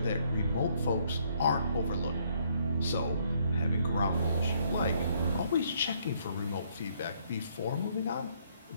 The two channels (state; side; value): inverted; both; correlation -0.68